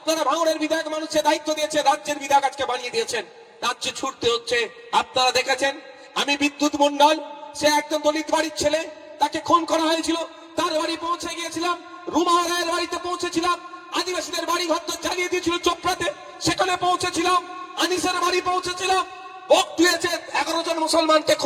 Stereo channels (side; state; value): both; identical; correlation 1.00